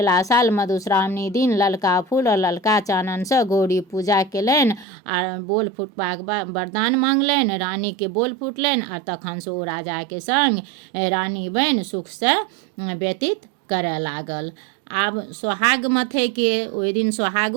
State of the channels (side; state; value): left; drops out; at 4.9 s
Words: साल मधुश्रावणी दिन ललका फूल और ललका चाननसँ गौरी पूजा केलनि आ बोल फुटबाक वरदान मांगलनि। रानीके बोल फुटलनि आ तखनसँ ओ राजाके संग रानी बनि सुखसँ व्यतीत करय लागल। आब सोहाग मथयके ओहि दिन